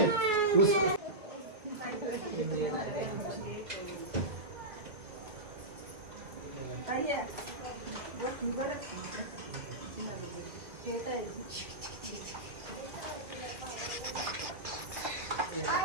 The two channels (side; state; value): left; late; 2.1 ms